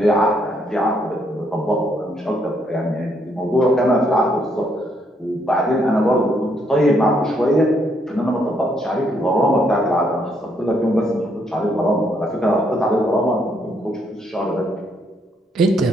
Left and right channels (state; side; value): normal; both; correlation 0.73